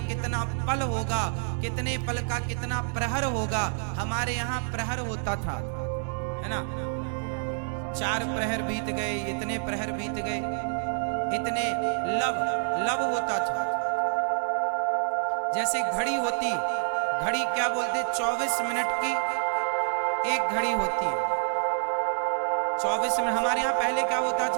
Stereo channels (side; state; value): left; silent; digital silence